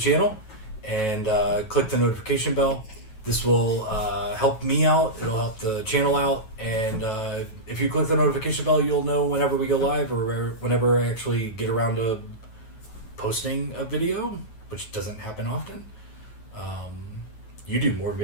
and click the notification bell. This will help me out. It'll help the channel out. And if you click the notification bell, you'll know whenever we go live or whenever I actually get around to posting a video, which doesn't happen often. You do more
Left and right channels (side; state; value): right; late; 9.2 ms